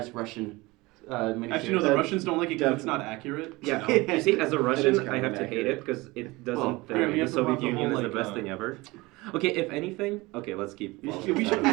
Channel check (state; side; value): quieter; left; 22.2 dB